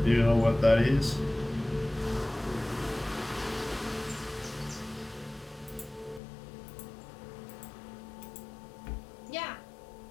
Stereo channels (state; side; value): drops out; right; at 6.2 s